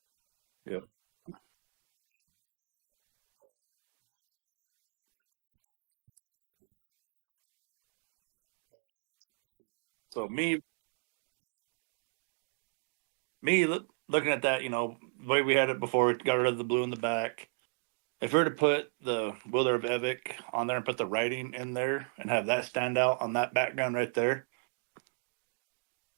Yeah. But like right now, we're growing, right? Like that's part of this is for us to grow. And so So me go ahead. looking at that, the way we had it before, we got rid of the blue in the back. If we were to put the Willer of Evic on there and put the writing in there and have that stand out on that background right there,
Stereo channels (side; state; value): left; silent; 54 dB below the other